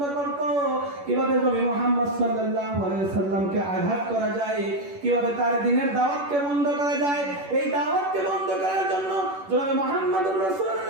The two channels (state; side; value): late; left; 11 ms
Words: করত। কিভাবে নবী মুহাম্মদ সাল্লাল্লাহু আলাইহি সাল্লামকে আঘাত করা যায়, কিভাবে তার দ্বীনের দাওয়াতকে বন্ধ করা যায়। এই দাওয়াতকে বন্ধ করার জন্য জনাবে মুহাম্মদুর